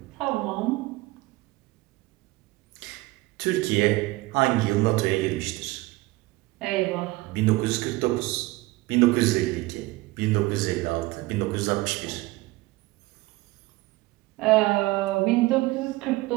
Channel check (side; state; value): left; quieter; 20.4 dB